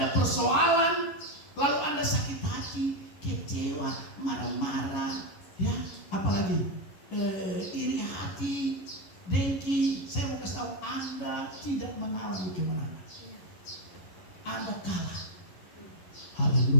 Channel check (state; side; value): late; right; 11 ms